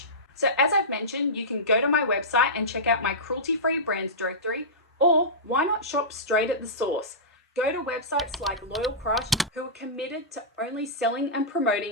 So as I've mentioned, you can go to my website and check out my cruelty-free brands directory, or why not shop straight at the source? Go to websites like Loyal Crush, who are committed to only selling and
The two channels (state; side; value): normal; both; correlation -0.16